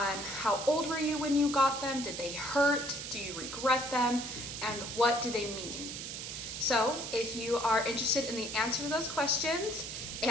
how old were you when you got them, did they hurt, do you regret them, and what do they mean? So if you are interested in the answer to those questions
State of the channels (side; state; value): right; noise; hiss, 7 dB below the sound